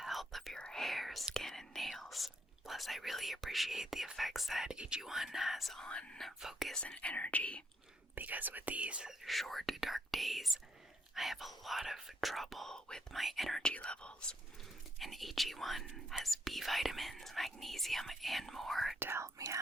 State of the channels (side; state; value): both; normal; correlation 0.75